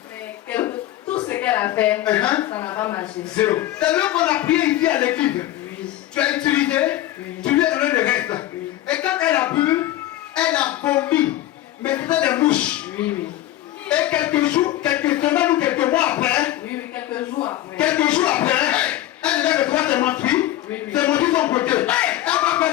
Mais tout ce qu'elle a fait, ça n'a pas marché. Zéro. C'est là qu'on a prié ici à l'église. Oui. Tu as utilisé, tu lui as donné le reste. Et quand elle a bu, elle a vomi. Mais c'était des mouches. Oui, oui. Et quelques jours, quelques semaines ou quelques mois après, Oui, oui, quelques jours après. elle devait le droit de mentir. Oui, oui. C'est mentir son côté. Elle va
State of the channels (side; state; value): right; quieter; 14.4 dB